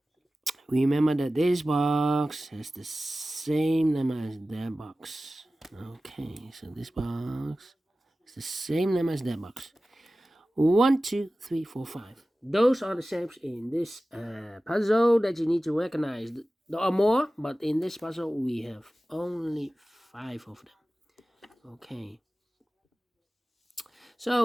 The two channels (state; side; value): normal; both; correlation 0.96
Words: Remember that this box has the same number as that box. Okay, so this box is the same number as that box. 1, 2, 3, 4, 5. Those are the shapes in this puzzle that you need to recognize. There are more, but in this puzzle we have only 5 of them. Okay.